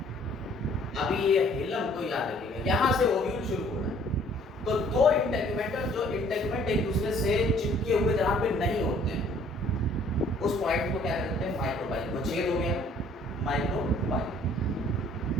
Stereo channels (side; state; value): both; normal; correlation 0.58